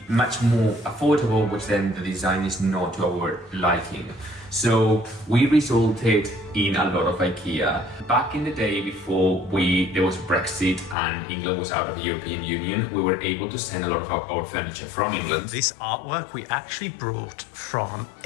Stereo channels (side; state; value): right; drops out; at 11.0 s